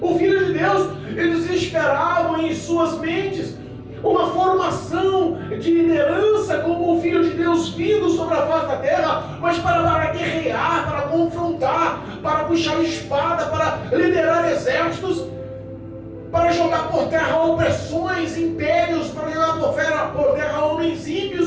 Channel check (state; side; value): identical; both; correlation 1.00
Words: o Filho de Deus. Eles esperavam em suas mentes uma formação de liderança como o Filho de Deus vindo sobre a face da terra, mas para guerrear, para confrontar, para puxar a espada, para liderar exércitos, para jogar por terra opressões, impérios, para jogar por terra homens